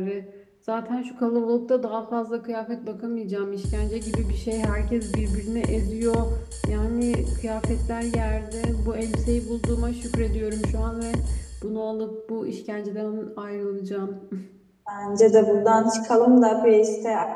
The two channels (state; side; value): identical; both; correlation 1.00